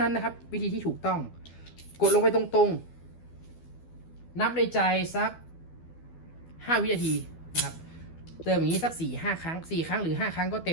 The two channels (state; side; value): late; right; 12 ms